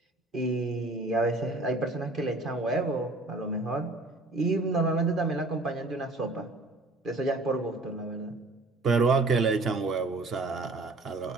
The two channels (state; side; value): quieter; left; 3.0 dB